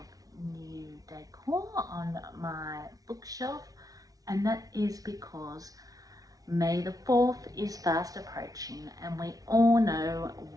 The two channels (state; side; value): late; left; 0.18 ms